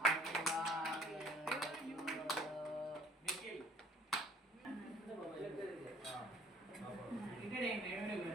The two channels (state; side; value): normal; both; correlation 0.54